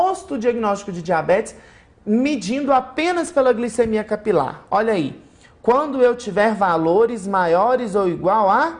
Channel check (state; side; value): identical; both; correlation 1.00